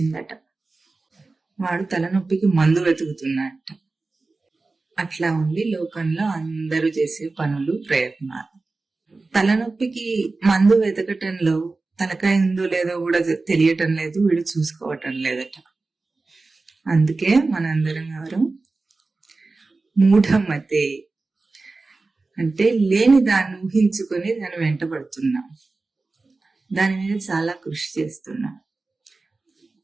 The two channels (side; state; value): left; quieter; 3.6 dB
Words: వాడు తలనొప్పికి మందు వెతుకుతున్నట్ట. అట్లా ఉంది లోకంలో అందరూ చేసే పనులు ప్రయత్నాలు. తలనొప్పికి మందు వెతకటంలో తలకాయ ఉందో లేదో కూడా తెలియటం లేదు, వీడు చూసుకోవటం లేదట. అందుకే మనందరం గారు మూఢమతే అంటే లేని దాన్ని ఊహించుకొని దాన్ని వెంటబడుతున్నాం, దాని మీద చాలా కృషి చేస్తున్నాం.